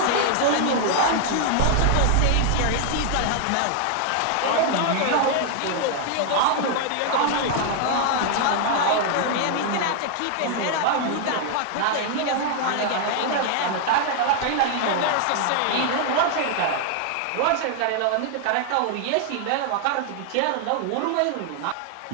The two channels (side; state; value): both; different; correlation 0.00